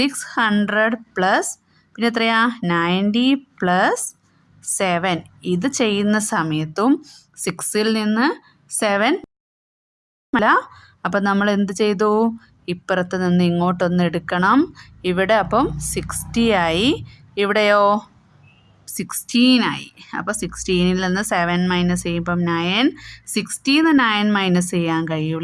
പ്ലസ് പിന്നെ എത്രയാ? 90 പ്ലസ് 7 ഇത് ചെയ്യുന്ന സമയത്തും 6ൽ നിന്ന് 7 അല്ല. അപ്പം നമ്മൾ എന്ത് ചെയ്തു? ഇപ്പുറത്ത് നിന്ന് ഇങ്ങോട്ടൊന്ന് എടുക്കണം. ഇവിടെ അപ്പം 60 ആയി. ഇവിടെയോ 16 ആയി. അപ്പോൾ 16ൽ നിന്ന് 7 മൈനസ് ചെയ്യുമ്പം 9. 60ൽ നിന്ന് 9 മൈനസ് ചെയ്യാൻ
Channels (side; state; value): both; identical; correlation 1.00